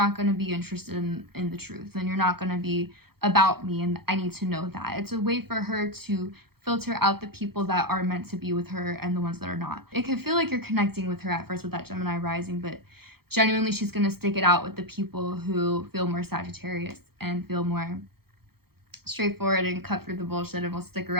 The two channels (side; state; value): left; late; 0.95 ms